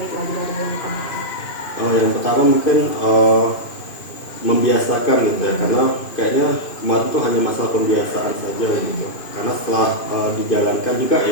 lagi dari yang kemarin? Yang pertama mungkin membiasakan gitu ya, karena kayaknya kemarin tuh hanya masalah pembiasaan saja gitu. Karena setelah dijalankan juga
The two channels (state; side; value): late; right; 2.5 ms